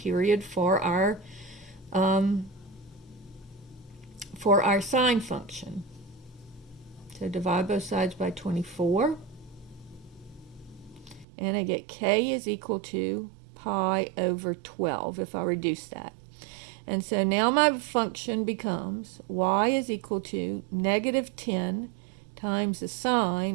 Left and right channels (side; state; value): left; drops out; at 11.2 s